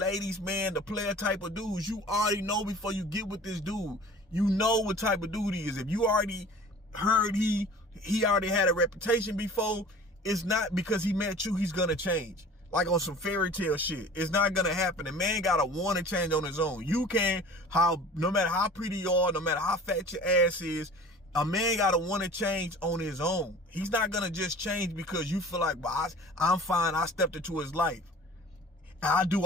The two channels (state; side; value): normal; both; correlation 0.44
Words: man, the player type of dudes, you already know before you get with this dude. You know what type of dude he is. If you already heard he already had a reputation before, it's not because he met you, he's gonna change. Like on some fairy tale shit. It's not gonna happen. The man gotta want to change on his own. You can, no matter how pretty you are, no matter how fat your ass is, a man gotta want to change on his own. He's not gonna just change because you feel like, well, I'm fine, I stepped into his life. I do